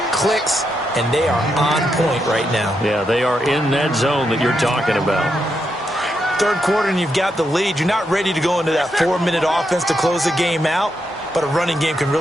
clicks. And they are on point right now. Yeah, they are in that zone that you're talking about. Third quarter and you've got the lead. You're not ready to go into that 4-minute offense to close the game out, but a running game can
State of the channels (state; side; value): normal; both; correlation 0.82